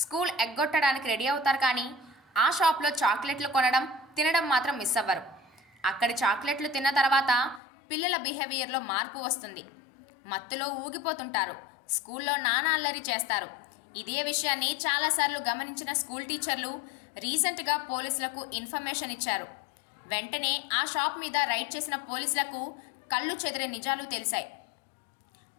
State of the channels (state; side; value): drops out; right; at 7.6 s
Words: స్కూల్ ఎగ్గొట్టడానికి రెడీ అవుతారు, కానీ ఆ షాప్లో చాక్లెట్లు కొనడం, తినడం మాత్రం మిస్ అవ్వరు. అక్కడి చాక్లెట్లు తిన్న తర్వాత పిల్లల బిహేవియర్లో మార్పు వస్తుంది. మత్తులో ఊగిపోతుంటారు. స్కూల్లో నానా అల్లరి చేస్తారు. ఇదే విషయాన్ని చాలాసార్లు గమనించిన స్కూల్ టీచర్లు రీసెంట్గా పోలీసులకు ఇన్ఫర్మేషన్ ఇచ్చారు. వెంటనే ఆ షాప్ మీద రైడ్ చేసిన పోలీసులకు కళ్ళు చెదిరే నిజాలు తెలిసాయి.